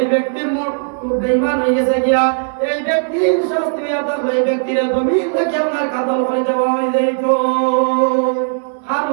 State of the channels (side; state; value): left; silent; 62 dB below the other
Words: ব্যক্তি বেঈমান হয়ে গেছে গিয়া, এই ব্যক্তির শাস্তি হবে, এই ব্যক্তির জমিন থেকে আপনার কাতল করে দেওয়া হয়ে যাইত। আর